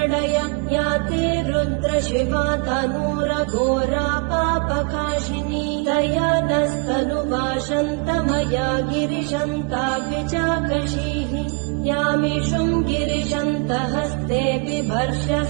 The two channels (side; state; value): left; quieter; 32.3 dB